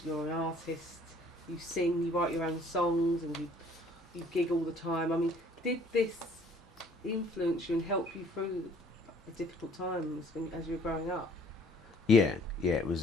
You're an artist. you sing, you write your own songs, and you gig all the time. I mean, did this influence you and help you through the difficult times as you were growing up? Yeah, it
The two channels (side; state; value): both; normal; correlation 0.57